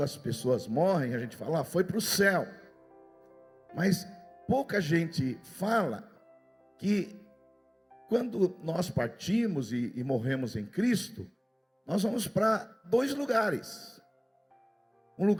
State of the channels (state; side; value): identical; both; correlation 1.00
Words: as pessoas morrem, a gente fala, foi para o céu. Mas pouca gente fala que quando nós partimos e morremos em Cristo, nós vamos para dois lugares. Um